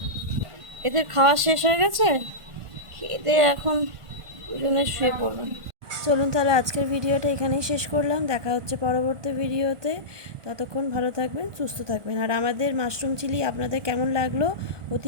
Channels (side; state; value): left; late; 1.4 ms